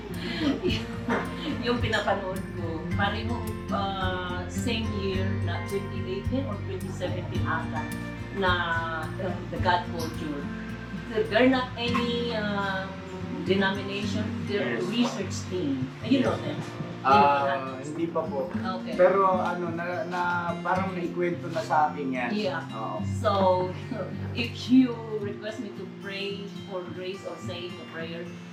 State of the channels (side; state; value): both; identical; correlation 1.00